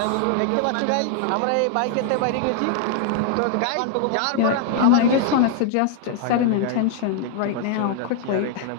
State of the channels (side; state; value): both; different; correlation 0.00